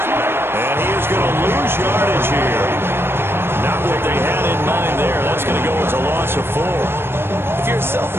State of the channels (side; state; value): left; late; 0.11 ms